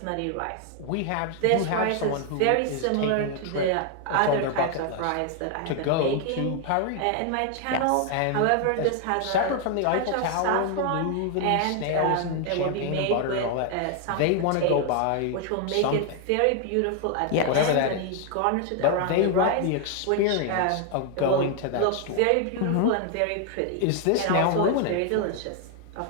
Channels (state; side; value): different; both; correlation 0.00